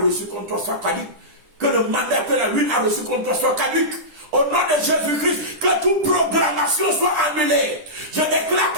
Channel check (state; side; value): late; left; 10 ms